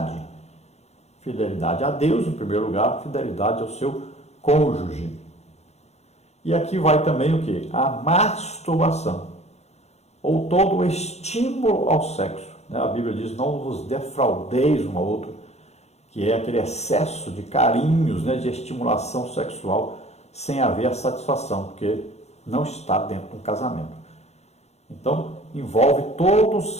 Fidelidade a Deus, em primeiro lugar, fidelidade ao seu cônjuge. E aqui vai também o que? A masturbação, ou todo o estímulo ao sexo. A Bíblia diz, não vos defraudeis um ao outro, que é aquele excesso de carinhos, de estimulação sexual, sem haver a satisfação, porque não está dentro de um casamento. Então, envolve todo o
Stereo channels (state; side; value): late; right; 0.31 ms